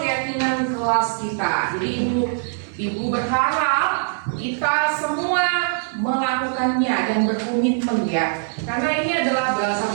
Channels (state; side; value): silent; left; 57 dB below the other